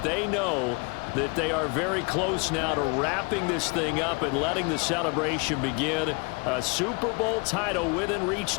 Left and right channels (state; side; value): quieter; right; 30.6 dB